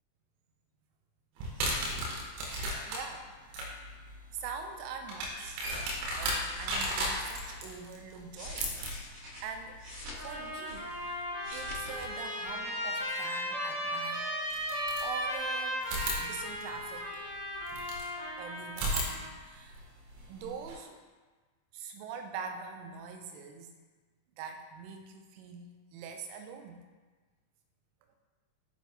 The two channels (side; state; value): left; late; 27 ms